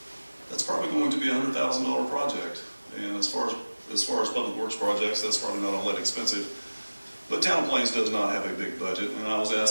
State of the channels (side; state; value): both; inverted; correlation -1.00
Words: that's probably going to be a $100,000 project. And as far as public works projects, that's probably not all that expensive. But Town of Plains does not have a big budget, and I was